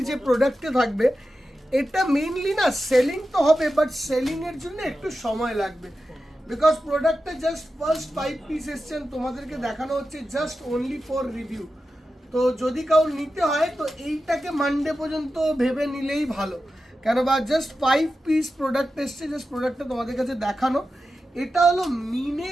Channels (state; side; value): normal; both; correlation 0.92